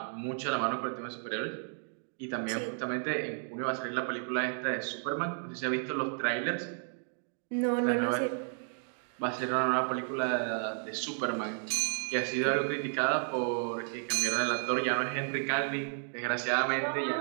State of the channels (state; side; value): silent; left; 56 dB below the other